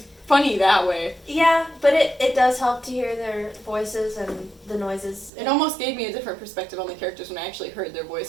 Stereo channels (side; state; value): left; drops out; at 5.3 s